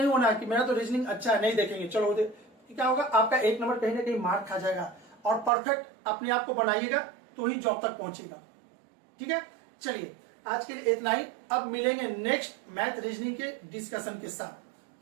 होना कि मेरा तो रीजनिंग अच्छा है, नहीं देखेंगे चलो क्या होगा, आपका 1 नंबर कहीं ना कहीं मार्क खा जाएगा। और परफेक्ट अपने आप को बनाइएगा तो ही जॉब तक पहुंचेगा। ठीक है, चलिए आज के लिए इतना ही, अब मिलेंगे नेक्स्ट मैथ रीजनिंग के डिस्कशन के साथ।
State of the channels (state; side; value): drops out; left; at 5.5 s